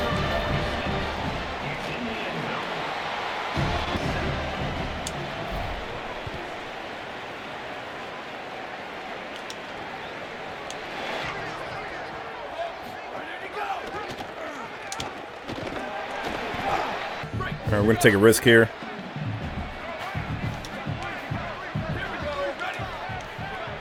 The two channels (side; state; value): both; identical; correlation 1.00